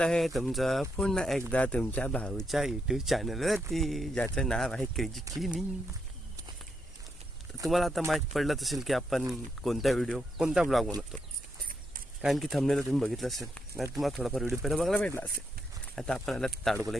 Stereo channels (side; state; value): both; normal; correlation 0.80